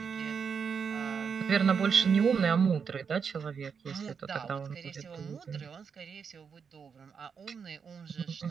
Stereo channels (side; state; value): left; quieter; 6.3 dB